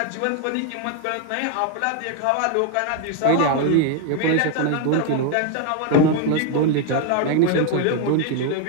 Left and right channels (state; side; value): different; both; correlation 0.00